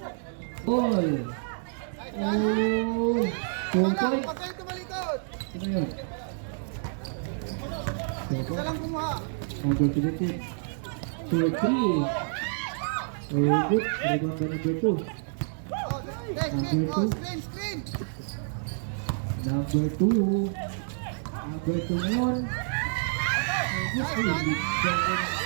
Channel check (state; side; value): silent; left; digital silence